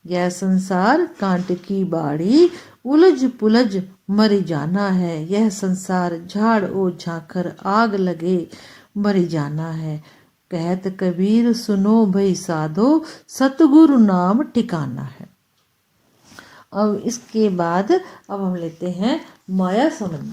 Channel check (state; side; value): identical; both; correlation 1.00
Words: यह संसार कांट की बाड़ी, उलझ पुलझ मर जाना है, यह संसार झाड़ ओ झांखर, आग लगे मर जाना है। कहत कबीर सुनो भई साधो, सतगुरु नाम ठिकाना है। अब इसके बाद अब हम लेते हैं माया